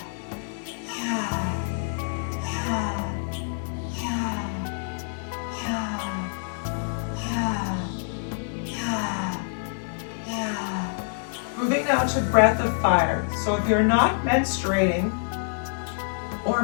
Moving now to breath of fire. So if you're not menstruating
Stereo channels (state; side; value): silent; right; digital silence